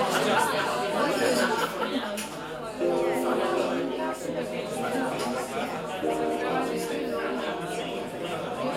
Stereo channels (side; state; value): both; identical; correlation 1.00